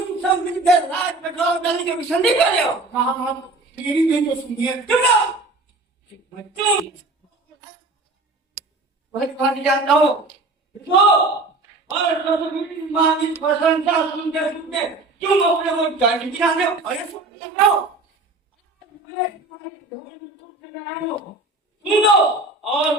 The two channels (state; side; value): quieter; left; 3.2 dB